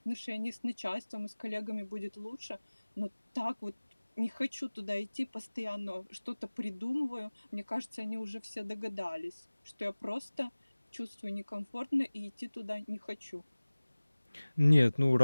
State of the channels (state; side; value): inverted; both; correlation -1.00